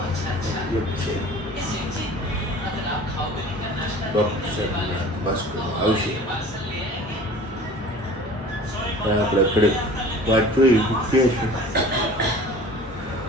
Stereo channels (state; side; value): normal; both; correlation 0.44